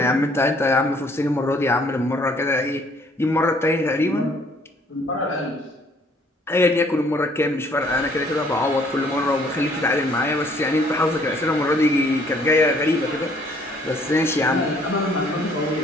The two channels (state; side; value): normal; both; correlation 0.61